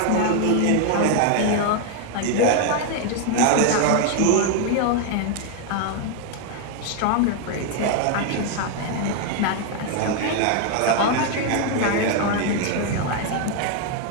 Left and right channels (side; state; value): both; different; correlation 0.01